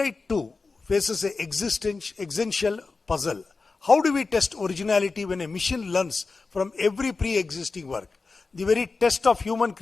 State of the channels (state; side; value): quieter; right; 4.1 dB